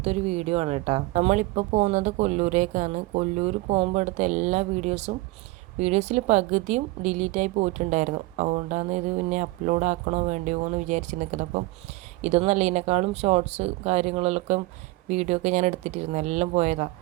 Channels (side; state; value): left; quieter; 21.0 dB